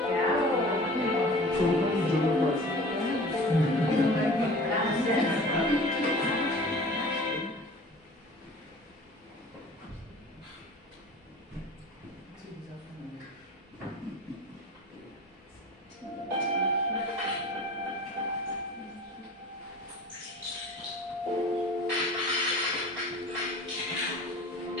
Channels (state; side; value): normal; both; correlation 0.42